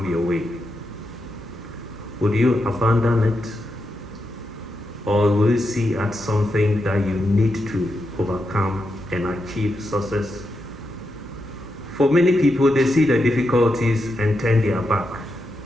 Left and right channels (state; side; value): normal; both; correlation 0.85